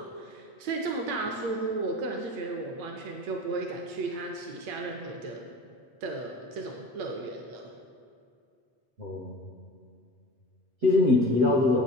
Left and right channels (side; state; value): left; late; 8.6 ms